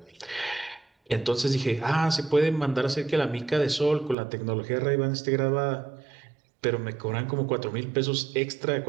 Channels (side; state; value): left; drops out; at 4.2 s